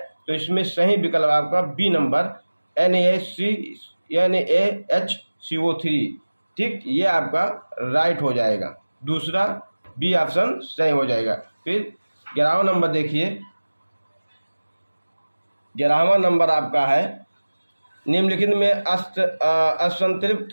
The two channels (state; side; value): inverted; both; correlation -1.00